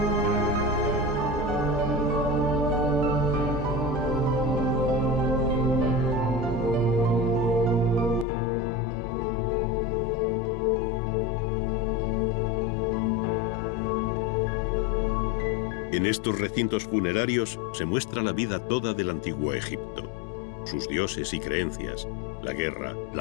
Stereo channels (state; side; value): drops out; right; at 8.2 s